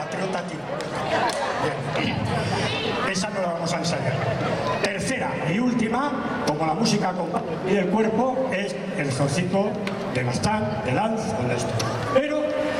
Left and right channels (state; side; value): identical; both; correlation 1.00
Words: trio, ta, ti. Bien. Esa no la vamos a ensayar. Tercera y última, como la música y el cuerpo, es el zorcito de Bastán, de Lanz, con esto. Pero